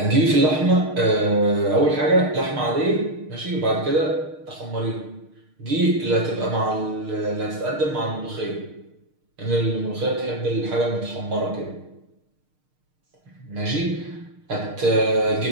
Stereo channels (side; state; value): left; late; 6.5 ms